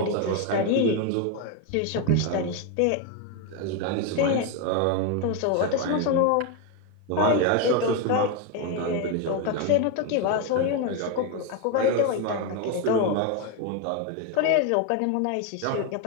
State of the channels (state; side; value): different; both; correlation 0.02